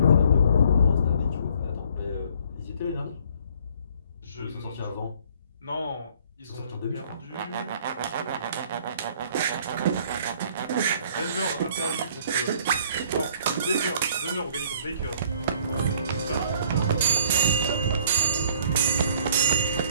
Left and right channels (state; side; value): inverted; both; correlation -0.58